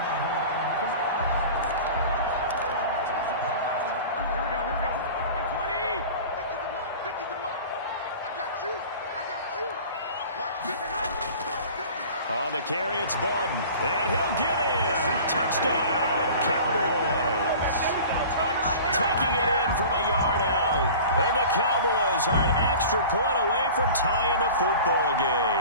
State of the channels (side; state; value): both; inverted; correlation -0.40